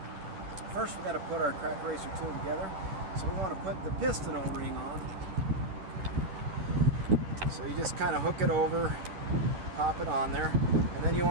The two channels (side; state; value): left; late; 10 ms